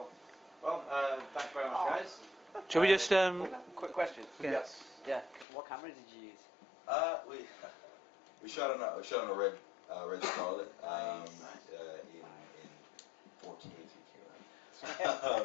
Well, thanks very much, guys. Shall we just Quick question. Yes. Yeah. What camera did you use? We shot on a red Scarlet in 4K.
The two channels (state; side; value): drops out; right; at 5.5 s